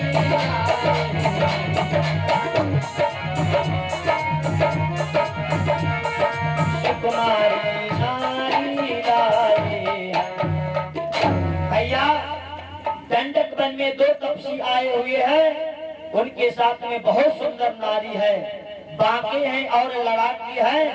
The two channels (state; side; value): identical; both; correlation 1.00